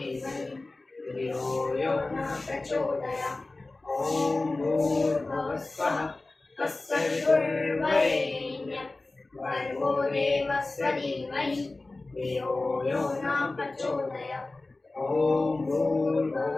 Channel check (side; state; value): right; quieter; 3.2 dB